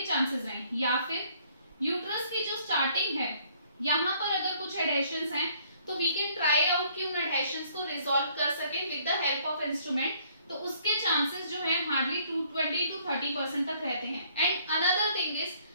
चांसेस रहें। या फिर यूट्रस की जो स्टार्टिंग है यहाँ पर अगर कुछ एडहेशंस हैं तो वी कैन ट्राई आउट कि उन एडहेशंस को रिजॉल्व कर सके with the help of instrument, तो उसके चांसेस जो है हार्डली 20 to 30% तक रहते हैं। And another thing is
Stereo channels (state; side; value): inverted; both; correlation -0.63